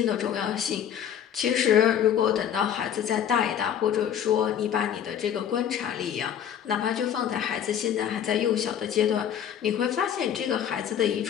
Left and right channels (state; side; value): quieter; right; 9.3 dB